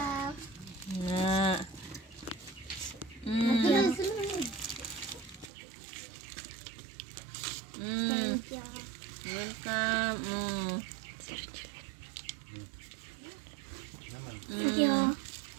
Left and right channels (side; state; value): left; drops out; at 5.5 s